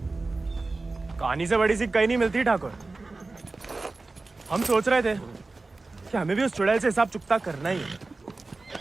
कहानी से बड़ी सी कहीं नहीं मिलती ठाकुर। हम सोच रहे थे कि हमें भी उस चुड़ैल से हिसाब चुकता करना ही है।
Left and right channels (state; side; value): quieter; left; 3.5 dB